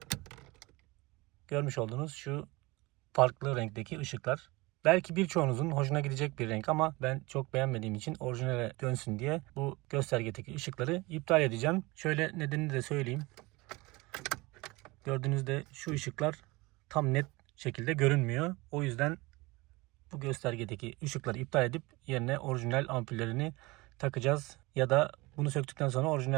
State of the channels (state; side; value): quieter; left; 23.0 dB